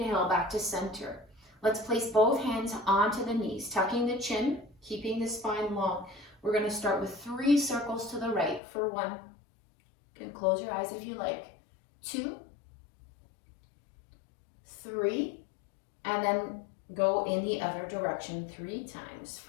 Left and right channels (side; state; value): right; drops out; at 8.6 s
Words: back to center. Let's place both hands onto the knees, tucking the chin, keeping the spine long. We're going to start with 3 circles to the right for 1. You can close your eyes if you like. 2, 3, and then go in the other direction 3 times